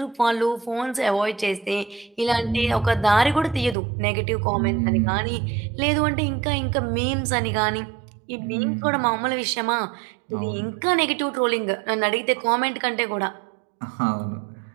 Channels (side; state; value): left; drops out; at 3.8 s